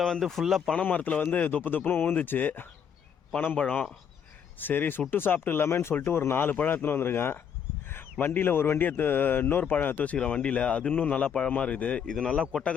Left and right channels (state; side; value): quieter; right; 7.8 dB